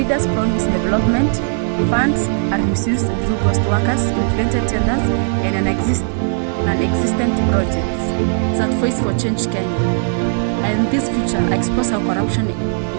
promise development, funds are misused through ghost workers, inflated tenders, and non-existent projects that Voice for Change Kenya. And this future expose how corruption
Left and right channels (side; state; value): left; silent; digital silence